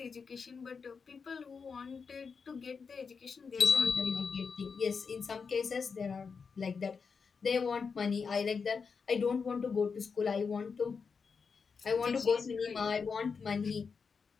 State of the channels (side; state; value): right; quieter; 5.5 dB